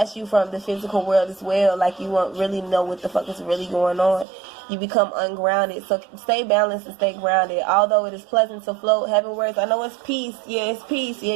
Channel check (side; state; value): left; drops out; at 4.2 s